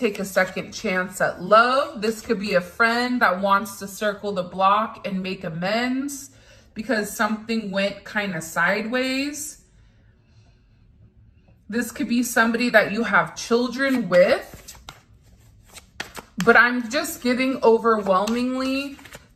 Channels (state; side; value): identical; both; correlation 1.00